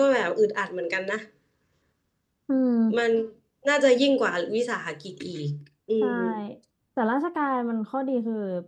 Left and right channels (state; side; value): identical; both; correlation 1.00